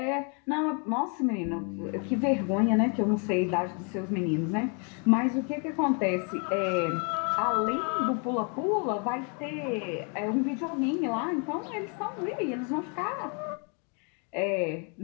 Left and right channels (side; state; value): right; quieter; 37.6 dB